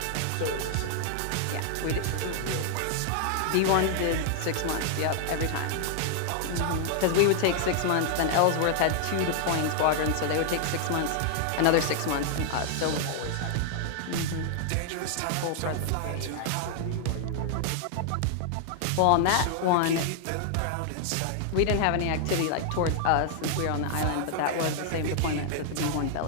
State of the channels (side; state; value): both; different; correlation 0.00